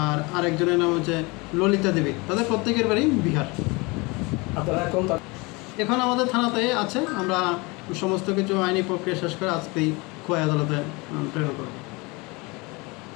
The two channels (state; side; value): quieter; right; 26.1 dB